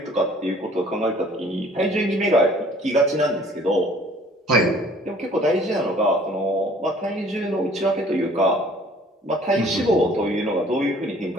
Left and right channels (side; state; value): both; normal; correlation 0.54